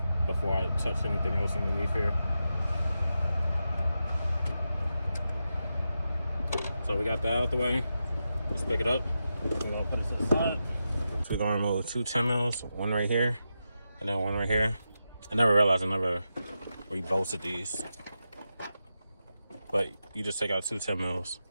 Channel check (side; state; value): both; inverted; correlation -0.89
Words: before I touch anything else underneath here. So we got that out the way. Let's pick it up. We're gonna put it to the side. So we're gonna remove 2 10 mils, one right here, and then one right here. I never realized I never rebolted these. But you just take out 2 10 mils.